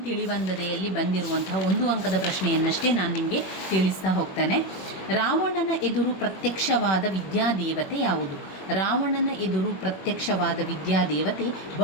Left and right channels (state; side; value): late; right; 21 ms